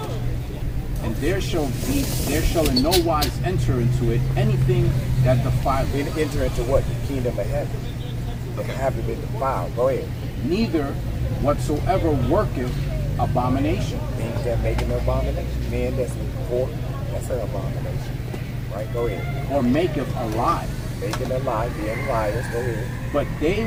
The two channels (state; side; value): identical; both; correlation 1.00